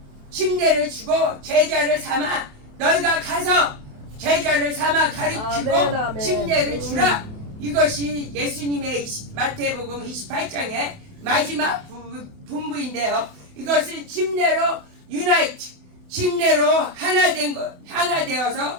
침례를 주고 제자를 삼아 너희가 가서 제자를 삼아 가르치고 아멘, 아멘. 침례를 주라. 이것이 예수님의 마태복음 28장의 마지막 분부인데요. 이것은 침례로 유나이트, 침례로 하나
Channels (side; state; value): left; late; 28 ms